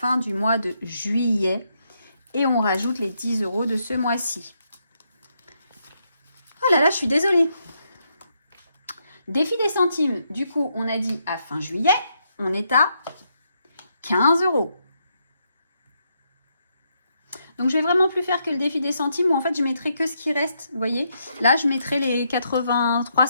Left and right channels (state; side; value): inverted; both; correlation -0.78